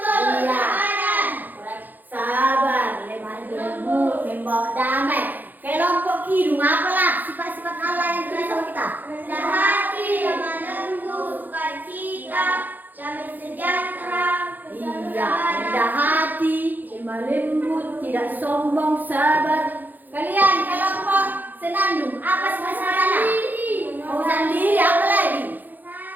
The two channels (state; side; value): late; left; 0.085 ms